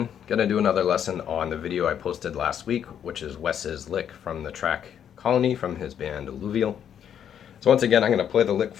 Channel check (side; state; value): right; quieter; 9.1 dB